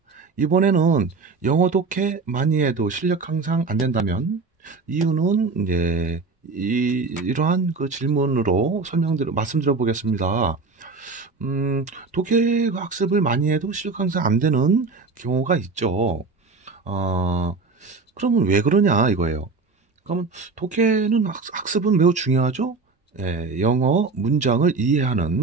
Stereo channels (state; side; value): quieter; left; 4.2 dB